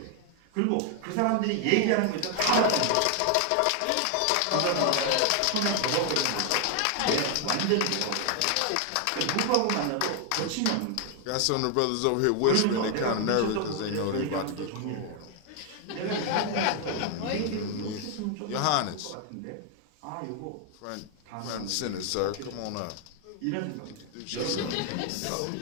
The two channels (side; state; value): both; different; correlation 0.00